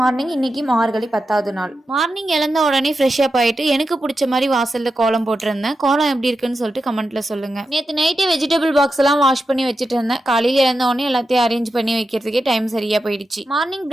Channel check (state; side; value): normal; both; correlation 0.89